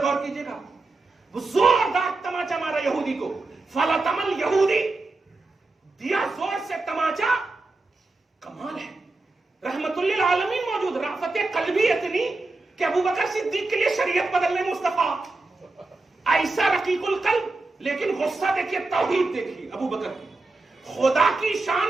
غور کیجئے گا، وہ زوردار تماچا مارا یہودی کو. فلطم الیہودی، دیا زور سے تماچا. کمال ہے، رحمت للعالمین موجود، رافت قلبی اتنی کہ ابو بکر صدیق کے لیے شریعت بدلنے مصطفیٰ. ایسا رقیق القلب، لیکن غصہ دیکھیے، توحید دیکھیے ابو بکر کی. خدا کی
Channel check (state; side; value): quieter; left; 3.3 dB